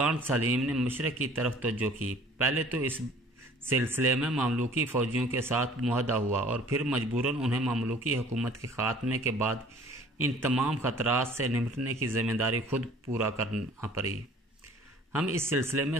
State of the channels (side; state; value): both; normal; correlation 0.51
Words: سلیم نے مشرق کی طرف توجہ کی۔ پہلے تو اس سلسلے میں مملوکی فوجیوں کے ساتھ معاہدہ ہوا اور پھر مجبوراً انہیں مملوکی حکومت کے خاتمے کے بعد ان تمام خطرات سے نمٹنے کی ذمہ داری خود پورا کرنا پڑی۔ ہم اس سلسلے میں